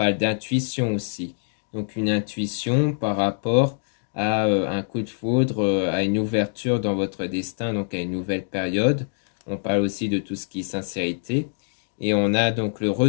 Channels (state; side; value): silent; right; digital silence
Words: d'intuition aussi. Donc une intuition par rapport à un coup de foudre, à une ouverture dans votre destin, donc à une nouvelle période. On parle aussi de tout ce qui est sincérité. Et on a donc le